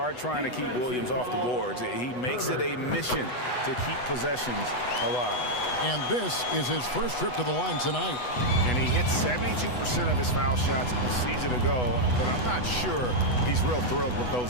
trying to keep Williams off the boards. He makes it a mission to keep possessions alive. And this is his first trip to the line tonight. And he hit 72% of his foul shots a season ago, but I'm not sure he's real thrilled with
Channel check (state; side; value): late; right; 8.1 ms